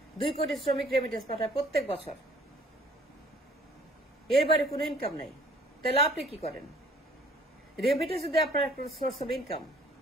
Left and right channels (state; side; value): normal; both; correlation 0.55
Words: 2 কোটি শ্রমিক রেমিটেন্স পাঠায় প্রত্যেক বছর, এর বাইরে কোনো ইনকাম নাই। তাহলে আপনি কি করেন? রেমিটেন্স যদি আপনার একটা সোর্স অফ ইনকাম,